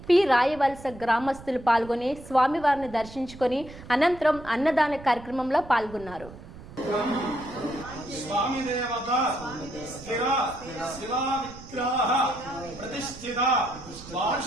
పి రాయవలస గ్రామస్తులు పాల్గొని స్వామివారిని దర్శించుకొని అనంతరం అన్నదాన కార్యక్రమంలో పాల్గొన్నారు. स्वामी देवता स्थिर शिला विग्रह प्रतिष्ठित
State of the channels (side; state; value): right; noise; rumble, 16 dB below the sound